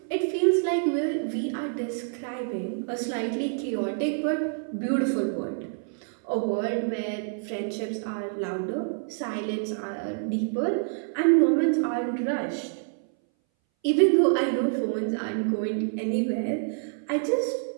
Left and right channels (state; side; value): silent; left; 59 dB below the other